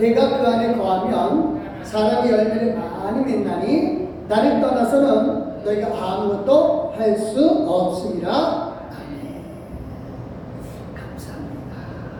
그 안에 거하면 사람이 열매를 많이 맺나니 나를 떠나서는 너희가 아무것도 할 수 없습니다. 아멘. 감사합니다.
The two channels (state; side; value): identical; both; correlation 1.00